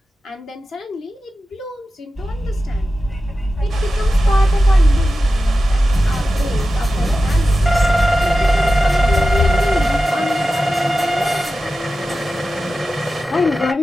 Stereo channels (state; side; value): normal; both; correlation 0.93